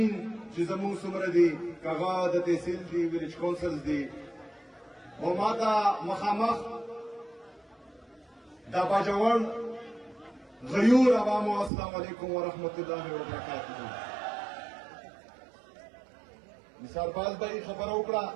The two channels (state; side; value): drops out; left; at 11.7 s